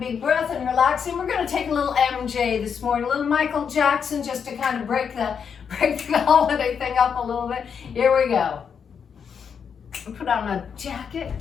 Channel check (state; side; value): quieter; right; 6.9 dB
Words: breath and relaxing. We're going to take a little MJ this morning, a little Michael Jackson, just to kind of break the holiday thing up a little bit. Here we go. Put on a jacket.